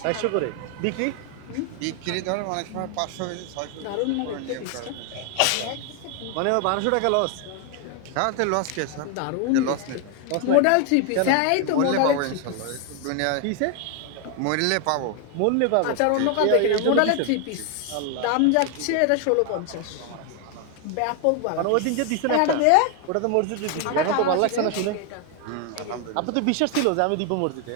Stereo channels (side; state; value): both; different; correlation 0.01